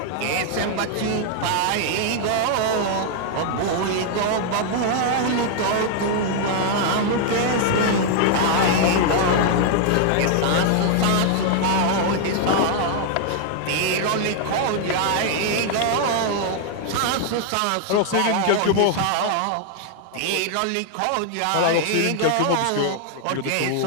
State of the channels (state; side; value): different; both; correlation 0.00